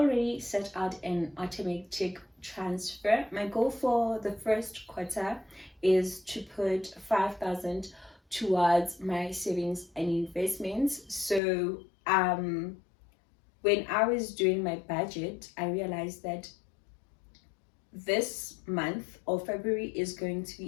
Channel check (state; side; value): drops out; right; at 11.4 s